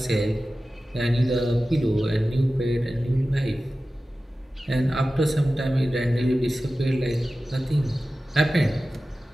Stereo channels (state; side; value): normal; both; correlation 0.95